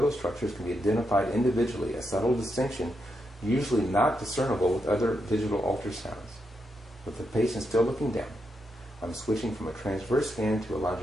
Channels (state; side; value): normal; both; correlation 0.83